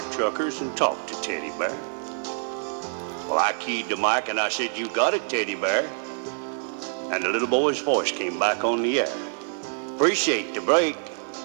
truckers, and talk to Teddy Bear." Well, I keyed the mic and I said, "You got it, Teddy Bear." And the little boy's voice came back on the air. "Appreciate the break.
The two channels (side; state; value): left; silent; 56 dB below the other